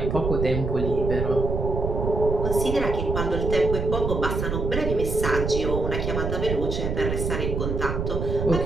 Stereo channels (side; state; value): right; noise; rumble, 2 dB below the sound